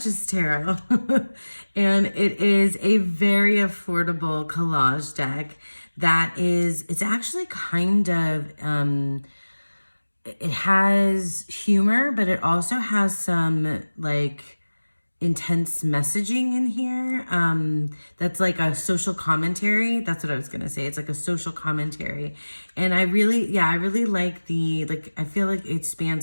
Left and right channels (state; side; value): inverted; both; correlation -1.00